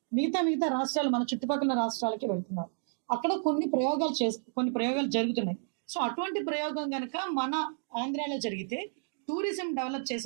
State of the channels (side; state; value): left; silent; digital silence